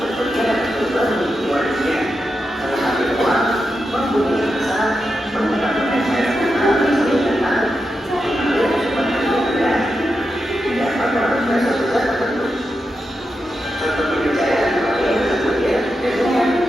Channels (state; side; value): normal; both; correlation 0.87